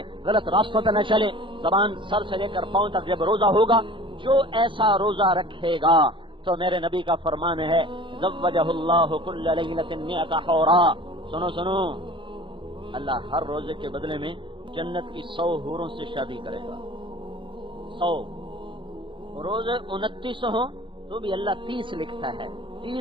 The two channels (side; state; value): left; late; 0.24 ms